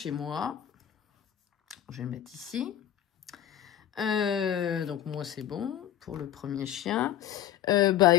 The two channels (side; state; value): right; quieter; 11.3 dB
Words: moi. Je vais le mettre ici. Donc, moi, c'est bon pour le premier chien.